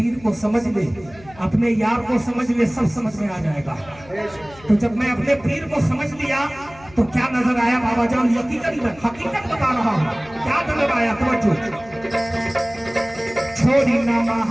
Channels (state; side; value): noise; left; hum, 22 dB below the sound